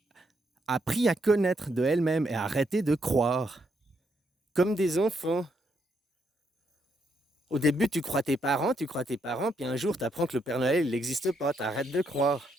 appris à connaître de elle-même et arrêté de croire. Comme des enfants. Au début, tu crois tes parents, puis un jour, tu apprends que le Père Noël, il n'existe pas, tu arrêtes de croire.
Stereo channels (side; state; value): both; normal; correlation 0.76